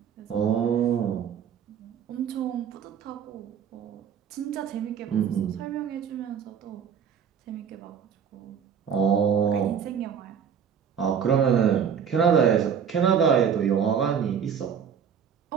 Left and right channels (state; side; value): quieter; left; 7.6 dB